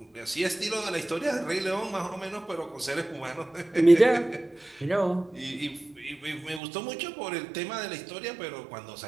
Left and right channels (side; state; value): left; drops out; at 6.6 s